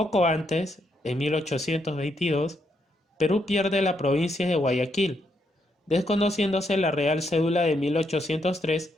antes, en 1822, Perú pierde la provincia de Guayaquil, desconociéndose la Real Cédula de 1803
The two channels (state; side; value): normal; both; correlation 0.77